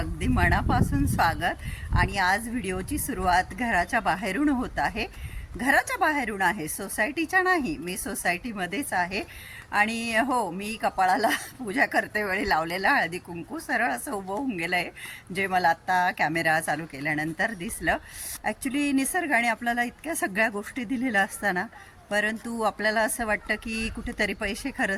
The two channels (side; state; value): both; identical; correlation 1.00